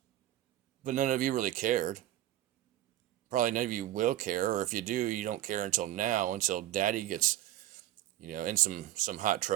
But none of you really cared. Probably none of you will care, or if you do, you don't care until now, until daddy gets, in some hot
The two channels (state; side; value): quieter; left; 13.8 dB